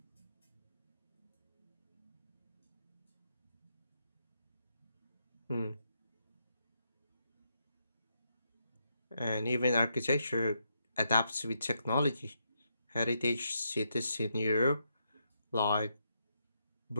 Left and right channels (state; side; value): inverted; both; correlation -0.80